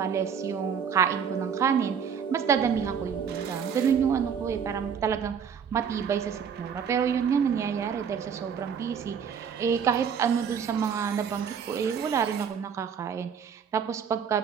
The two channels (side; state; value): left; quieter; 7.3 dB